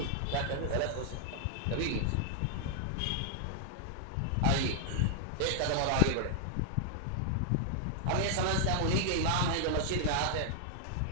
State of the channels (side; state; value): both; different; correlation -0.01